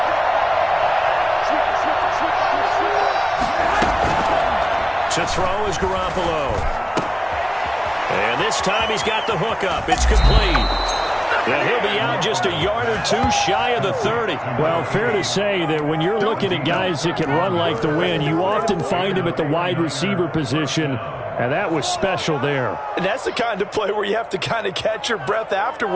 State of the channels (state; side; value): identical; both; correlation 1.00